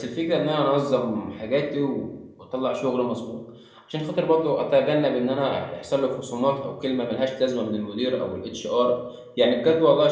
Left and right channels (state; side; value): identical; both; correlation 1.00